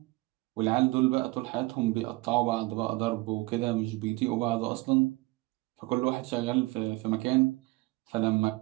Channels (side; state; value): left; quieter; 22.3 dB